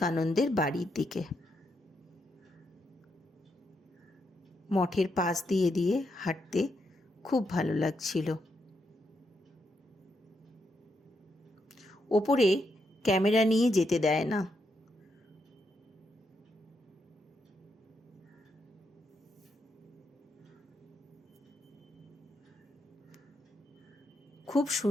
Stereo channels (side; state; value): both; normal; correlation 0.81